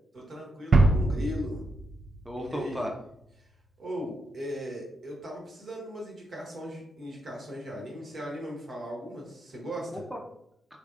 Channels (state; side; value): normal; both; correlation 0.83